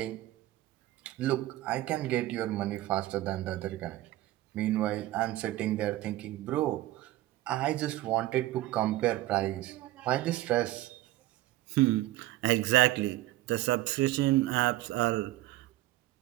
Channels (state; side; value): quieter; left; 16.3 dB